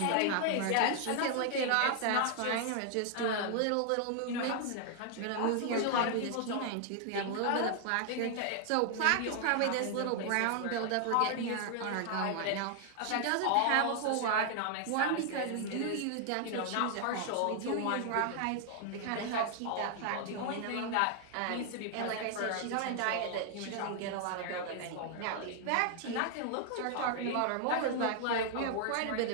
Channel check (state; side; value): different; both; correlation 0.00